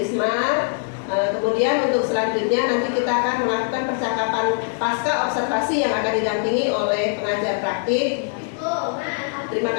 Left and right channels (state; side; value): silent; right; 64 dB below the other